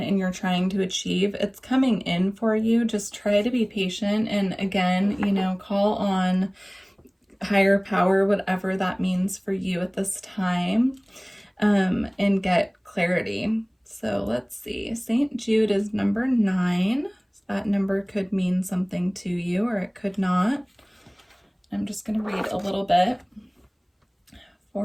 and you're trying to achieve, it's coming in for you. Just try to be patient. And again, you know, call on higher power, whatever that means for you at this time, and get clarity. So let's see. St. Jude is number 9. That number could mean something to you, or it could not. I'm just going to read a little bit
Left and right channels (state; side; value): identical; both; correlation 1.00